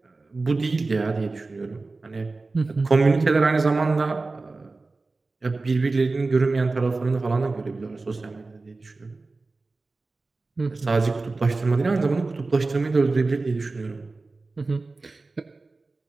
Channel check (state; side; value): quieter; left; 3.6 dB